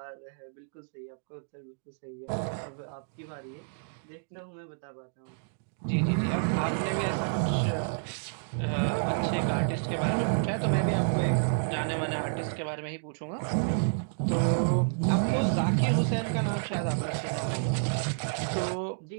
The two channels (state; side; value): silent; left; digital silence